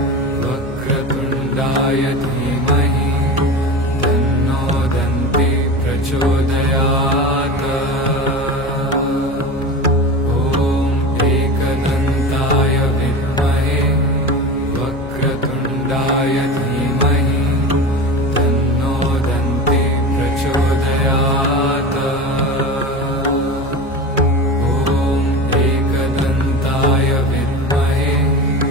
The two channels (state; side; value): normal; both; correlation 0.28